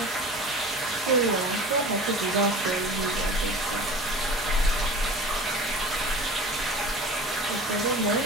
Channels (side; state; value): both; normal; correlation 0.38